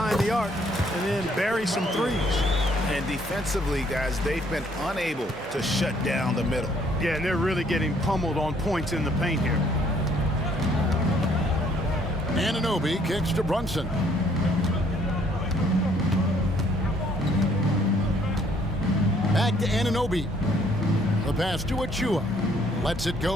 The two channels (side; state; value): both; normal; correlation 0.64